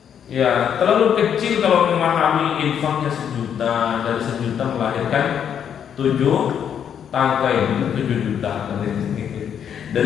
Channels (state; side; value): quieter; right; 8.5 dB